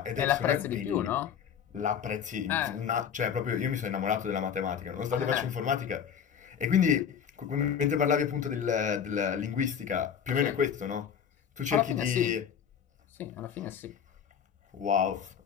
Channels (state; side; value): quieter; right; 8.0 dB